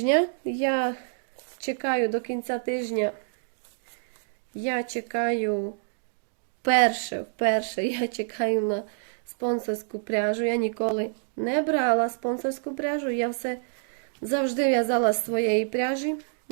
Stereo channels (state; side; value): silent; left; digital silence